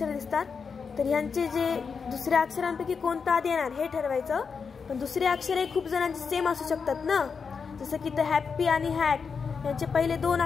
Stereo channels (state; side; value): quieter; right; 5.7 dB